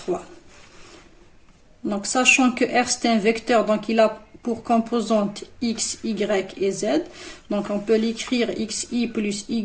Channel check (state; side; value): identical; both; correlation 1.00